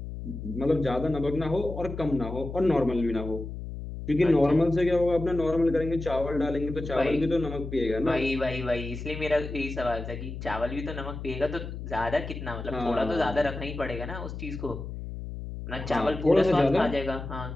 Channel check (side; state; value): left; noise; hum, 8 dB below the sound